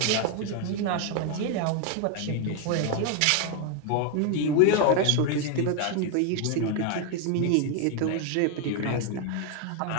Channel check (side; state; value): both; different; correlation 0.01